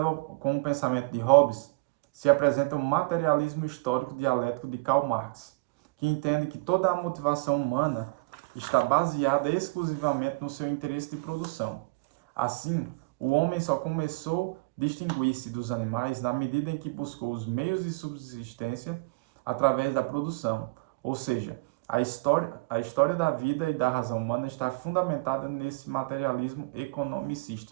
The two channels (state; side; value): quieter; left; 26.6 dB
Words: com o pensamento de Hobbes, se apresenta o materialismo histórico dialético de Karl Marx, que entende que toda a motivação humana está baseada exclusivamente no seu interesse de produção. Assim, o homem só começou a distinguir-se dos animais na medida em que buscou os meios de subsistência através da produção. Ou seja, a história da vida e da razão humana está fundamentada nesse materialismo